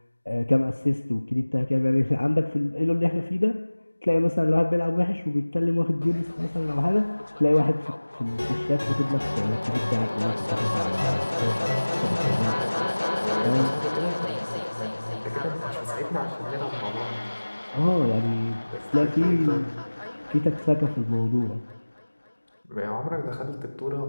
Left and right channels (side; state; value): both; inverted; correlation -1.00